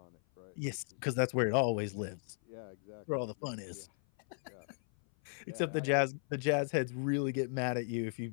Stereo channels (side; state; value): right; silent; 54 dB below the other